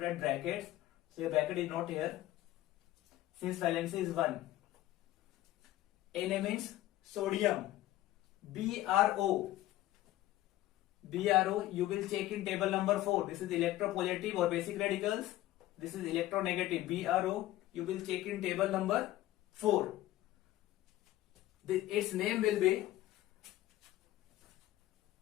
write brackets. So your bracket is not here since valency is 1. Na means sodium. BRO, you will check in table number 4. This is electropositive or basic radicals. This is electronegative. BRO, you will check in table number 4. Its name will be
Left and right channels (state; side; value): quieter; right; 15.3 dB